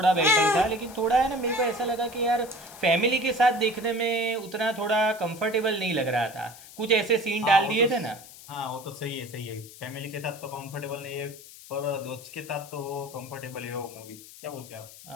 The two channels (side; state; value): left; noise; hiss, 18 dB below the sound